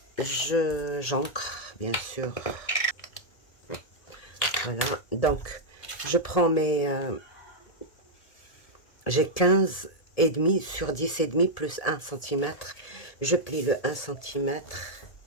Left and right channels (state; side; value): late; right; 1.8 ms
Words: J'encre, bien sûr. Voilà, donc je prends mes... j'ai 15 et demi sur 10 et demi plus 1 cm. Je plie le 1 cm.